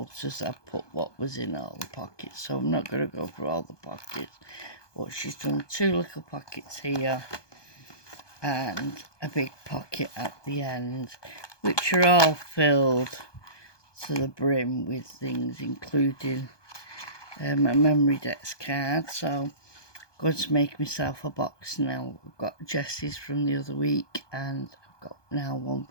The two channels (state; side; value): late; right; 1.2 ms